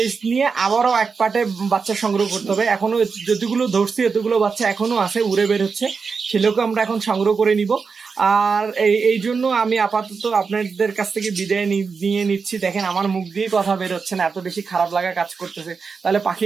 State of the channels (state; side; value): quieter; left; 5.2 dB